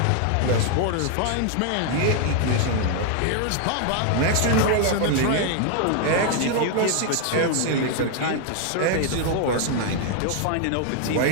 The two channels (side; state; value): both; different; correlation 0.00